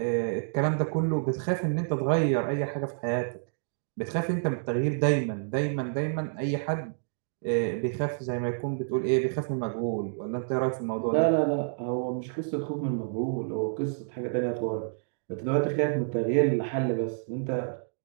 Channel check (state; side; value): silent; left; digital silence